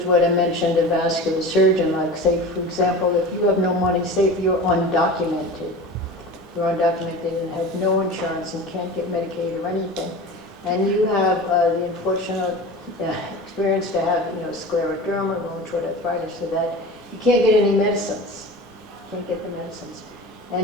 what I mentioned, a vascular surgeon, like say, for example, if you have no money, say if you're undocumented and have no insurance and can't get Medicaid or anything, and you have the unfortunate experience to have, scleroderma, rheumatoid arthritis, so that you can't get any medicines. Can't get the medicines.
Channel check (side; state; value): both; normal; correlation 0.33